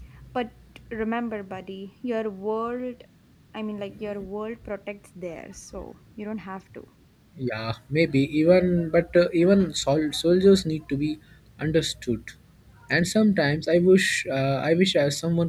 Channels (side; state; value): both; identical; correlation 1.00